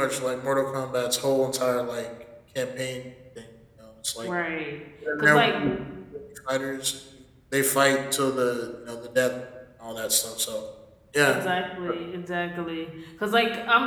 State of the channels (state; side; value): identical; both; correlation 1.00